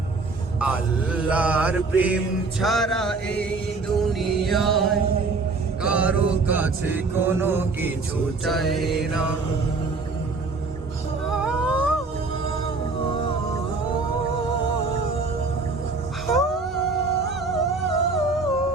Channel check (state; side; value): quieter; left; 3.9 dB